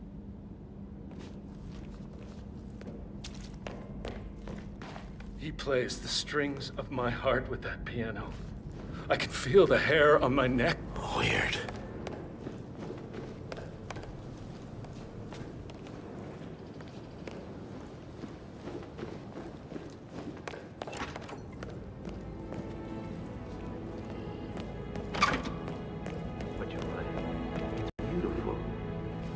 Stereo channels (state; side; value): identical; both; correlation 1.00